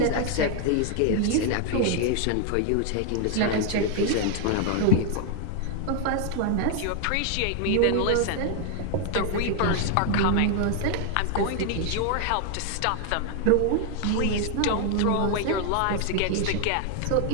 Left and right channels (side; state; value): both; different; correlation 0.00